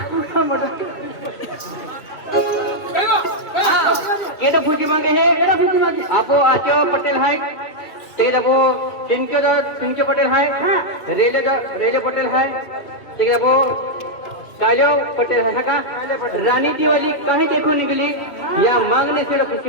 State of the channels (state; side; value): late; right; 2.7 ms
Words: पूरा मटन केटा फुजी मांगे है केटा फुजी मांगे आपो आचो पटेल है ते दबो तिनके पटेल है रेले पटेल है ते दबो कालो पटेल है का रानी दिवाली कहीं देखो निकली या मांगने से